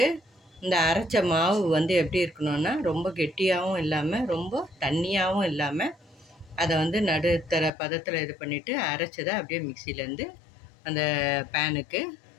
இந்த அரைச்ச மாவு வந்து எப்படி இருக்கணும்னா, ரொம்ப கெட்டியாகவும் இல்லாமல் ரொம்ப தண்ணியாகவும் இல்லாமல் அதை வந்து நடுத்தர பதத்தில் இது பண்ணிவிட்டு அரைச்சதை அப்படியே மிக்சியிலேருந்து அந்த பேனுக்கு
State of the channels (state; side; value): drops out; right; at 7.7 s